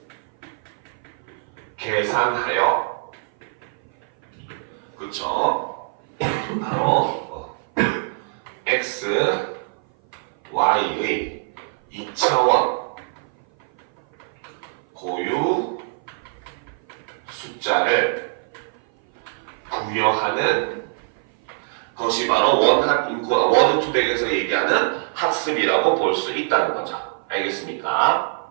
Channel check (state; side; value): silent; left; 56 dB below the other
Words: 계산하여 그쵸? 바로 x, y의 2차원 고유 숫자를 부여하는 것이 바로 원한 인코딩, 워드 투 백에서 얘기하는 학습이라고 볼 수 있다는 거죠. 알겠습니까?